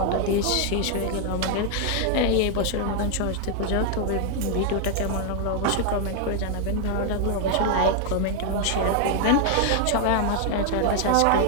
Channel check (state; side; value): different; both; correlation 0.00